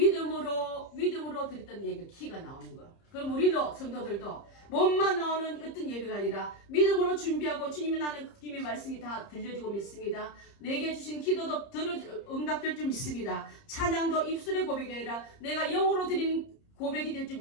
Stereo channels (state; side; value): late; right; 30 ms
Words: 드렸던 예배 키가 나오는 거예요. 그럼 우리도 성도들도 몸만 나오는 어떤 예배가 아니라 믿음으로 준비하고 주님이 나는 주님의 말씀이 다 들려지고 믿습니다. 내게 주신 기도도 응답될 줄 믿습니다. 찬양도 입술의 고백이 아니라 내가 영으로 드린 고백이 될 줄